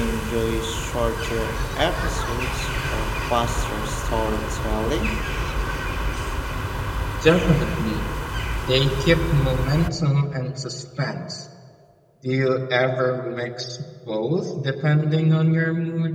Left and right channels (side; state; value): both; identical; correlation 1.00